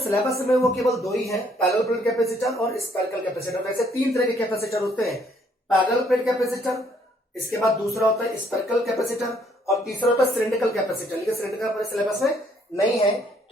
में वो केवल दो ही है, पैरेलल प्लेट कैपेसिटर और स्पेरिकल कैपेसिटर। वैसे तीन तरह के कैपेसिटर होते हैं, पैरेलल प्लेट कैपेसिटर, इसके बाद दूसरा होता है स्पेरिकल कैपेसिटर, और तीसरा होता है सिलिंड्रिकल कैपेसिटर। लेकिन सिलिंड्रिकल अपने सिलेबस में नहीं है,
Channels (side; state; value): both; normal; correlation 0.66